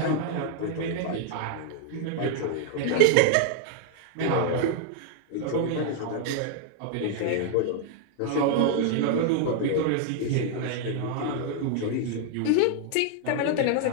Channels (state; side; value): different; both; correlation 0.00